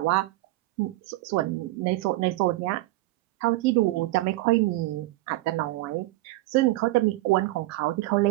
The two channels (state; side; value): quieter; left; 18.4 dB